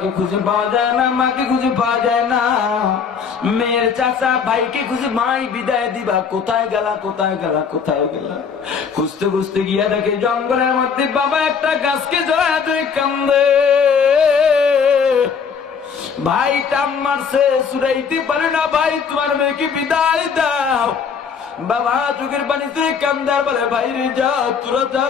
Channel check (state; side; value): quieter; right; 6.3 dB